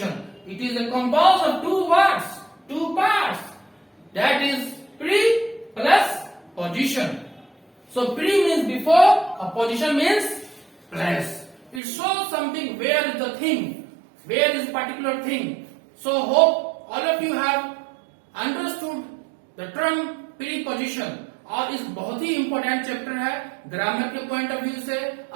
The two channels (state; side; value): drops out; left; at 11.8 s